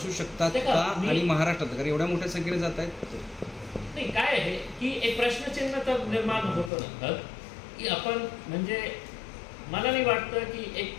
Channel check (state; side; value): drops out; right; at 6.7 s